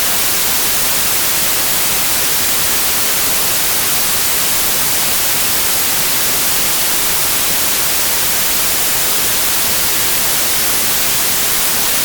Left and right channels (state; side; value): identical; both; correlation 1.00